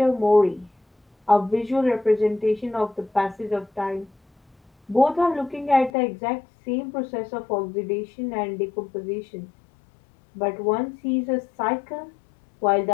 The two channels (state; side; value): drops out; right; at 5.9 s